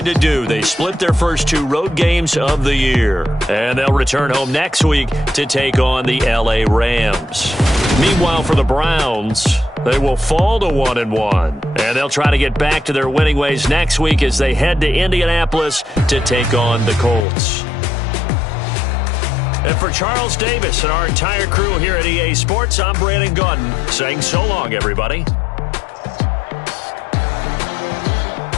to do. They split their first 2 road games of the year. And they'll return home next week to take on the LA Rams. Meanwhile, for the Browns, they will fall to 1-1. And they'll try to get back to their winning ways next week as they head to Indianapolis to take on the Colts. And for Charles Davis and our entire crew here at EA Sports, I'm Brandon Gaudin saying so long, everybody.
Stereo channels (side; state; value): right; drops out; at 17.2 s